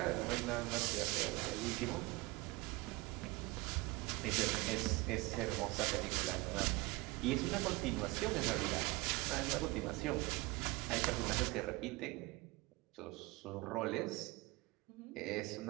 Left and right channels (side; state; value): left; quieter; 22.3 dB